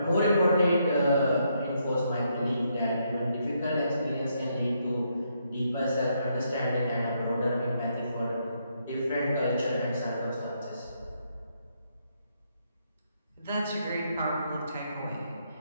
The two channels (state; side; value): inverted; both; correlation -0.76